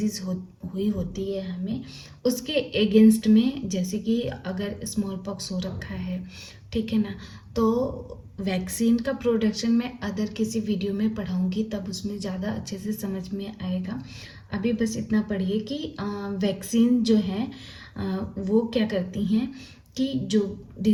हुई होती है हमें, उसके अगेंस्ट में, जैसे कि अगर स्मॉल पॉक्स हो रखा है, ठीक है ना, तो वैक्सीन का प्रोडक्शन मैं अदर किसी वीडियो में पढ़ाऊंगी, तब उसमें ज़्यादा अच्छे से समझ में आएगा। अभी बस इतना पढ़िए कि वैक्सीन जो है वो क्या करती हैं कि जो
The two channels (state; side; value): identical; both; correlation 1.00